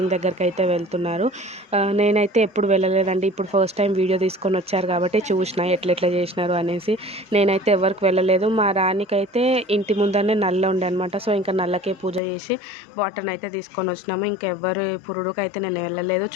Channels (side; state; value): right; drops out; at 12.2 s